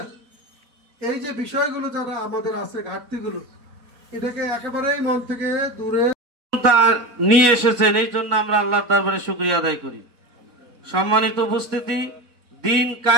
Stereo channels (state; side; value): late; left; 4.1 ms